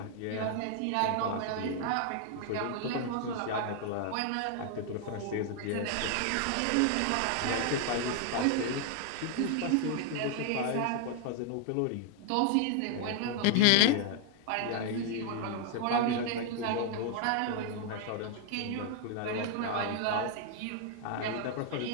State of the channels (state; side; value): different; both; correlation 0.00